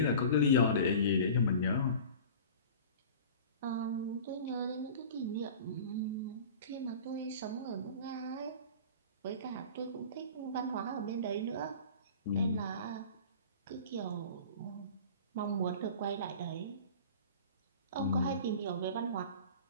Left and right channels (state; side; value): inverted; both; correlation -0.39